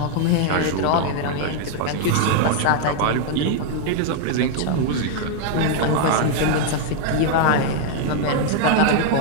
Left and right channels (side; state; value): both; different; correlation 0.00